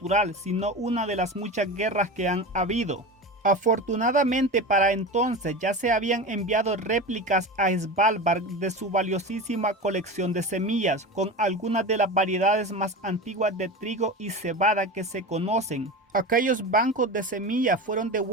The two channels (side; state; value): both; normal; correlation 0.27